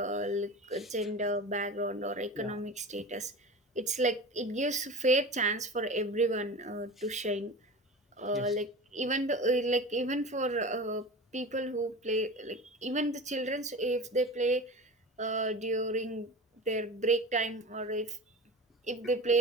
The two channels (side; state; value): both; normal; correlation 0.32